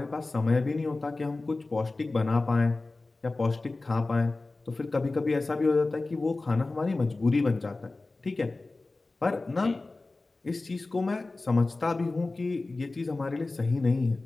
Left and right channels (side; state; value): right; quieter; 3.3 dB